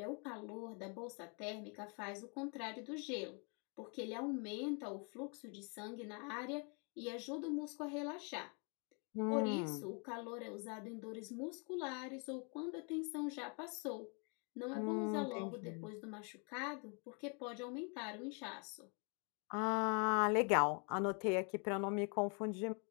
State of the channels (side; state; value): right; quieter; 37.3 dB